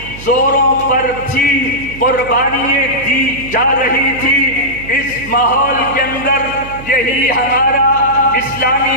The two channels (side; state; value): right; noise; hum, 14 dB below the sound